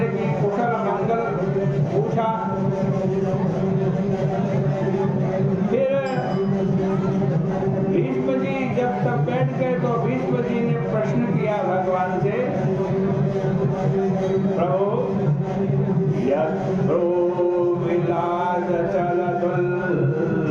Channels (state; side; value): identical; both; correlation 1.00